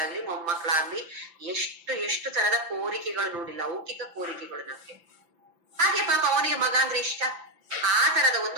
ಆಗ್ಲಿ, ಮೊಮ್ಮಕ್ಕಳಾಗ್ಲಿ, ಎಷ್ಟು ತರದ ಕೋರಿಕೆಗಳು ನೋಡಿ, ಲೌಕಿಕ ಕೋರಿಕೆಗಳು ನಮ್ಗೆ. ಹಾಗೆ ಪಾಪ ಅವನಿಗೆ ಮಗ ಅಂದ್ರೆ ಇಷ್ಟ, ಆ ತರದ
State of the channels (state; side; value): late; left; 5.9 ms